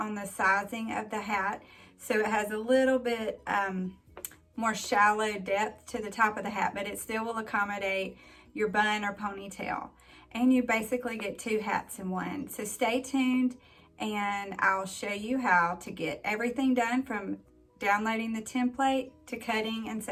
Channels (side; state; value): both; identical; correlation 1.00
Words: the sizing of the hat, so it has a little bit more shallow depth to the top of the hat, but it still will accommodate your bun or ponytail. And you basically get two hats in one. So stay tuned, and I'll show you how to get everything done from downloading the template to cutting and